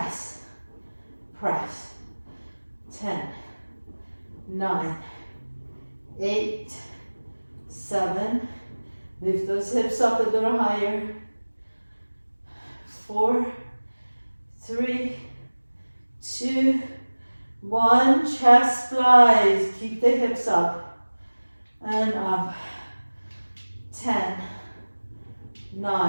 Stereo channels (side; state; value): both; inverted; correlation -1.00